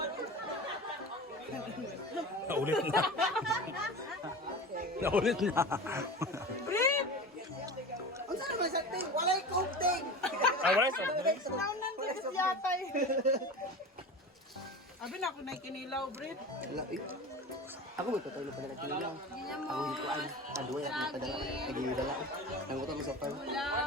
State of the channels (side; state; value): both; normal; correlation 0.31